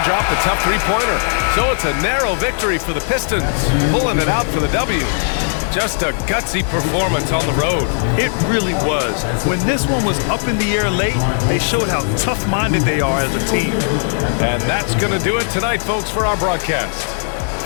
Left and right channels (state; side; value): silent; right; digital silence